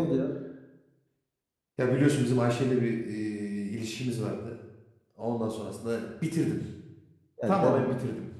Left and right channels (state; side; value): identical; both; correlation 1.00